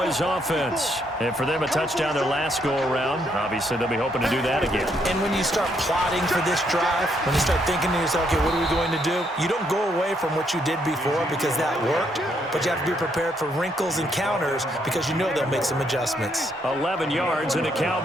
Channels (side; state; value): both; normal; correlation 0.73